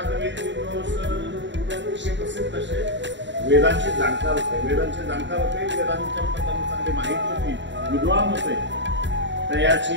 प्रसिद्ध असे वेदांचे जाणकार होते. वेदांच्या चांगली माहिती होती, विद्वान होते.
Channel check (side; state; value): left; late; 0.53 ms